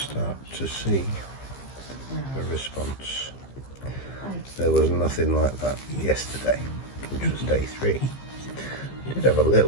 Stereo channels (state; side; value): late; right; 15 ms